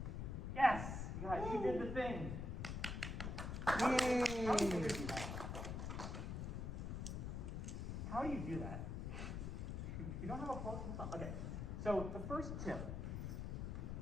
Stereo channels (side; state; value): left; noise; rumble, 3 dB below the sound